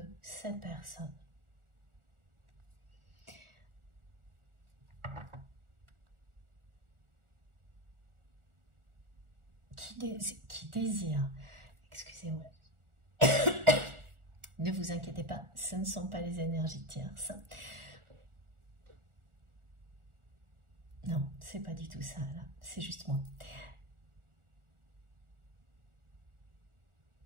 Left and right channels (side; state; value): left; late; 1.4 ms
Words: cette personne. Qui désire, excusez-moi, ne vous inquiétez pas, ce ne sont pas les énergies tierces. Non, c'est pas du tout ça, là, c'est juste moi.